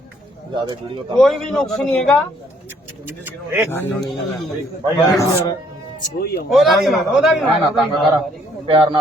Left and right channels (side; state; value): both; normal; correlation 0.65